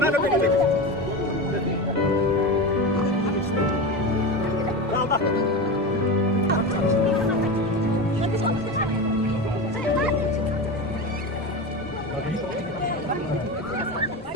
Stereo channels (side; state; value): both; normal; correlation 0.23